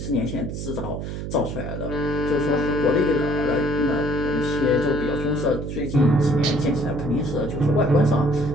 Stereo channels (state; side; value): noise; right; hum, 6 dB below the sound